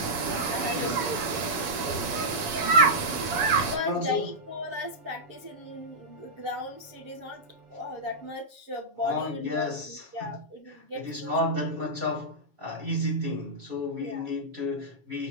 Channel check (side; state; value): left; late; 7.1 ms